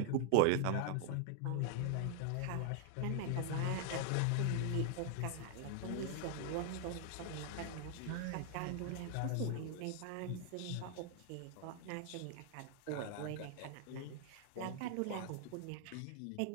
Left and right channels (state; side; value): different; both; correlation -0.01